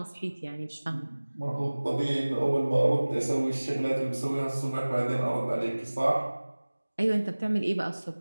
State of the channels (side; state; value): both; inverted; correlation -1.00